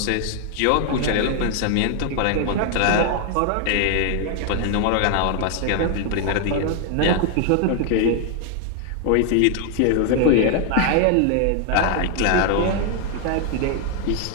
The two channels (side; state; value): both; different; correlation 0.00